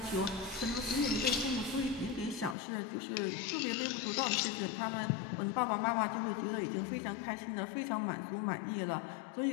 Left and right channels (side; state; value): right; drops out; at 2.6 s